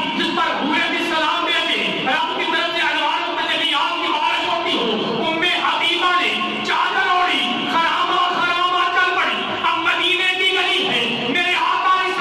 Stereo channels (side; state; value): both; identical; correlation 1.00